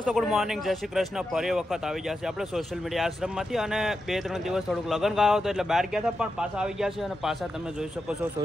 good morning, જય શ્રી કૃષ્ણ. ફરી વખત આવી ગયા છે આપણે સોશિયલ મીડિયા આશ્રમમાંથી. અને 2-3 દિવસ થોડુંક લગ્ન ગાયો હતો એટલે બહાર ગયા હતા, પણ પાછા આવી ગયા છે. અને પાછા તમે જોઈ શકો છો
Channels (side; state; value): both; normal; correlation 0.88